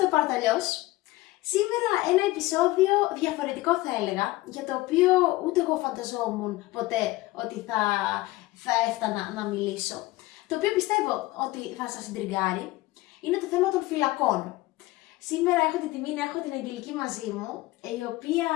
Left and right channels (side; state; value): right; quieter; 19.2 dB